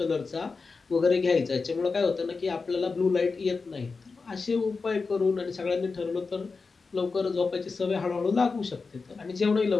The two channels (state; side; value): quieter; right; 4.4 dB